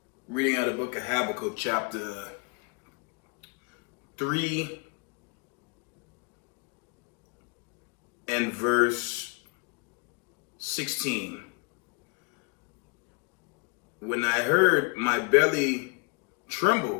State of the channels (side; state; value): right; quieter; 33.9 dB